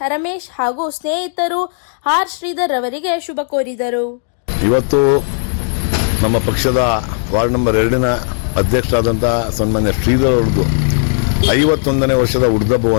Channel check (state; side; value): silent; right; digital silence